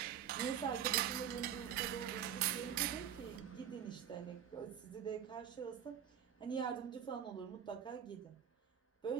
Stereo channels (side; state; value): left; quieter; 9.1 dB